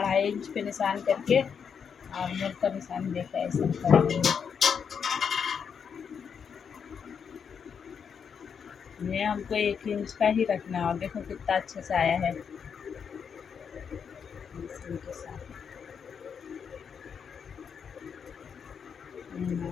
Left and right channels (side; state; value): right; quieter; 6.8 dB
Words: इंच पे निशान करके और मुड़ का निशान देकर ऐसा कर देंगे। ये हमको 1 इंच का ही रखना है और देखो कितना अच्छे से आया है इनके साथ।